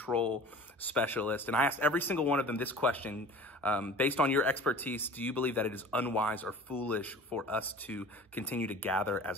specialists. And I asked every single one of them this question, based on your expertise, do you believe that it is unwise or foolish for us to continue to gather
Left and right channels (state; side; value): normal; both; correlation 0.41